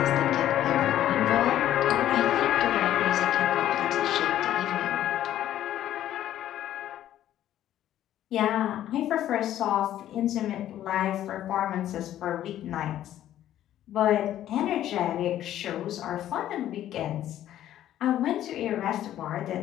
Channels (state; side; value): quieter; right; 12.2 dB